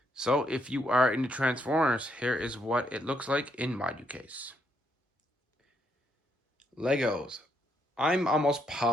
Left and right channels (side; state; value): both; normal; correlation 0.75